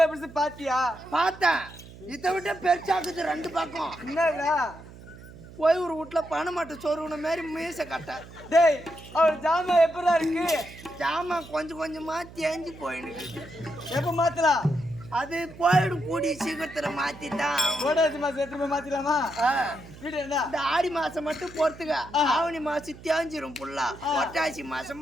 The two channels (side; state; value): right; noise; hum, 18 dB below the sound